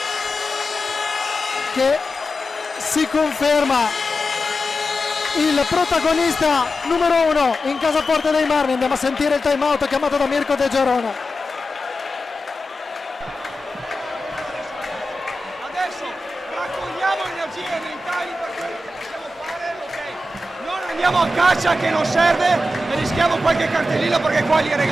che si conferma il protagonista numero 1 in casa Forte dei Marmi. Andiamo a sentire il time out chiamato da Mirko De Gerona. Adesso raccogliamo energie mentali per quello che possiamo fare, ok? Non andiamo a caccia che non serve e rischiamo qualche cartellino perché qua li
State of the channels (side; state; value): both; normal; correlation 0.91